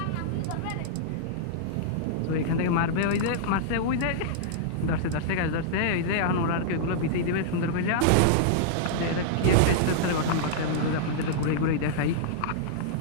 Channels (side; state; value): both; different; correlation -0.02